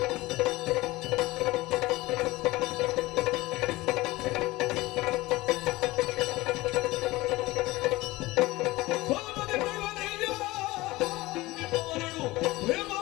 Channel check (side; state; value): right; quieter; 19.8 dB